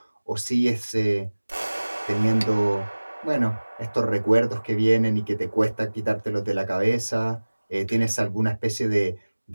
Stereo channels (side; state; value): both; inverted; correlation -1.00